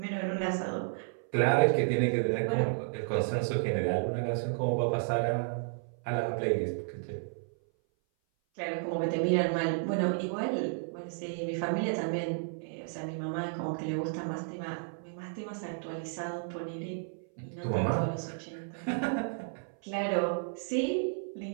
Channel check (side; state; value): left; silent; 56 dB below the other